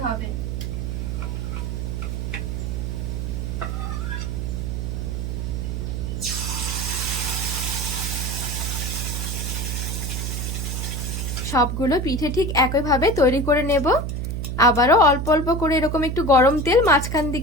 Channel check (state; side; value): noise; right; hum, 2 dB below the sound